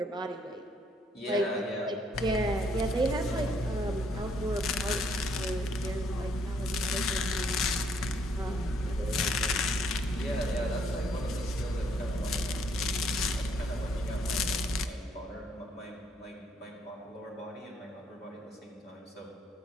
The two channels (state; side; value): normal; both; correlation 0.68